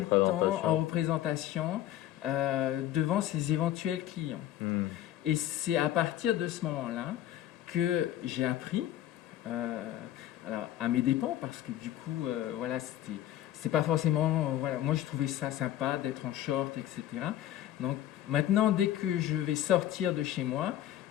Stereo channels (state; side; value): quieter; right; 12.6 dB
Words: temps en représentation devant ses éventuels clients. Et c'est à partir de ce moment-là que j'ai appris, alors à mes dépens, parce que du coup, voilà, c'était pas forcément, voilà, moi je trouvais ça sympa d'être en short, etc. Donc maintenant, dès que je vais sortir de chez moi,